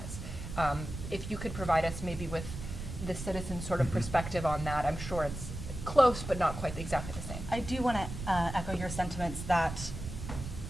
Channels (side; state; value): right; noise; rumble, 8 dB below the sound